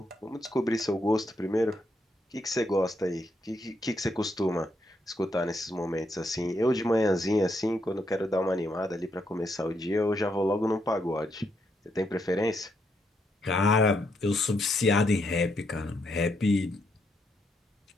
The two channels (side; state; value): both; normal; correlation 0.77